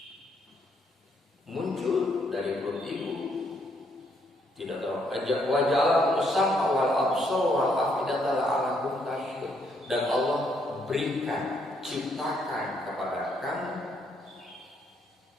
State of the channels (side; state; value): both; normal; correlation 0.72